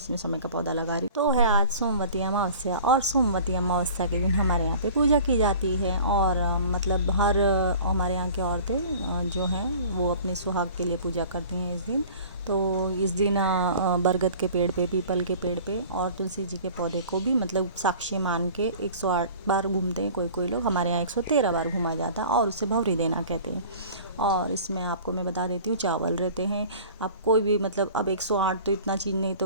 शमी का पौधा लगा रही हूँ। तो है आज सोमवती अमावस्या, और सोमवती अमावस्या के दिन हमारे यहाँ पे पूजा की जाती है। और हर हमारे यहाँ की औरतें जो हैं वो अपने सुहाग के लिए पूजा करती हैं इस दिन। तो इस दिन बरगद के पेड़ पे, पीपल के पेड़ पे और तुलसी जी के पौधे को भी साक्षी मान के 108 बार घूमते हैं। कोई लोग, हमारे यहाँ 113 बार घूमा जाता है और उसे भवरी देना कहते हैं। और इसमें आपको मैं बता देती हूँ, चावल रहते हैं। आप कोई भी अब 108 तो इतना चीज़ नहीं,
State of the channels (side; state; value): both; inverted; correlation -0.44